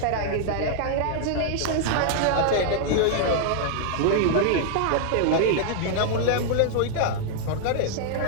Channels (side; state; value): both; different; correlation -0.01